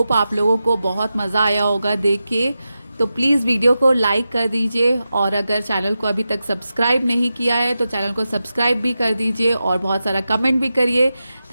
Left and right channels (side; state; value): both; inverted; correlation -0.91